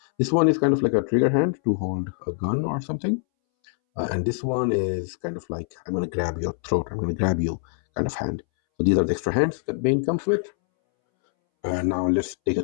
one is kind of like a trigger hand to hold a gun or something. And this one is kind of like, I'm going to grab your throat, I'm going to grab you kind of hand. So these are the extra hands that Bane comes with. And now let's take a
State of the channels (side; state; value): right; silent; 63 dB below the other